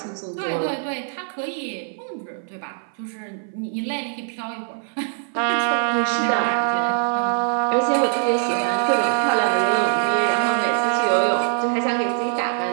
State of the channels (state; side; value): silent; left; 56 dB below the other